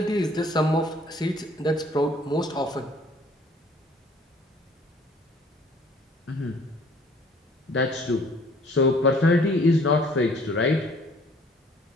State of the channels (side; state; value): both; normal; correlation 0.56